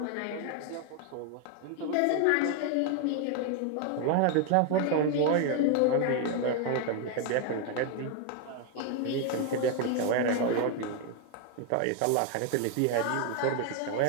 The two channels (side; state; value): both; different; correlation 0.01